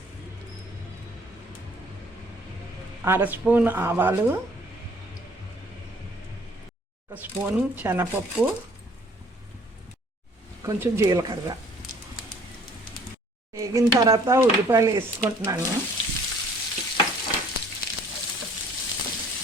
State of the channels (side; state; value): both; normal; correlation 0.57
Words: 1/2 స్పూన్ ఆవాలు, 1 స్పూన్ శనగపప్పు, కొంచెం జీలకర్ర వేగిన తర్వాత ఉల్లిపాయలు వేసుకుంటున్నాను.